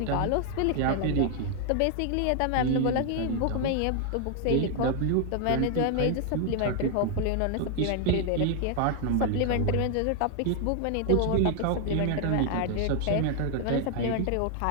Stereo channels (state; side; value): different; both; correlation 0.00